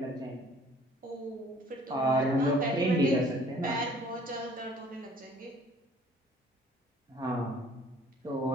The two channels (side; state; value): both; normal; correlation 0.55